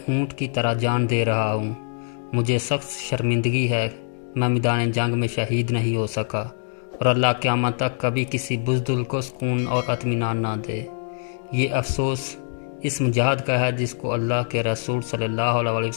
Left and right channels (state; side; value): silent; right; 63 dB below the other